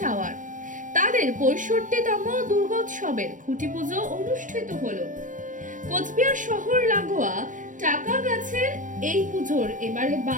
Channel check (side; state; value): left; late; 0.38 ms